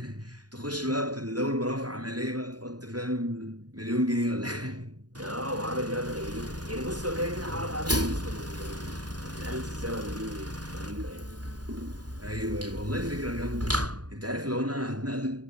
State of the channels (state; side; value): late; left; 0.69 ms